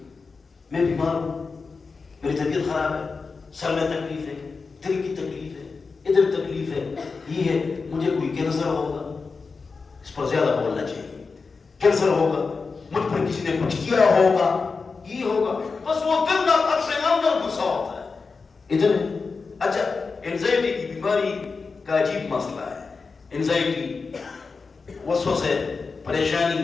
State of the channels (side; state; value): right; quieter; 4.6 dB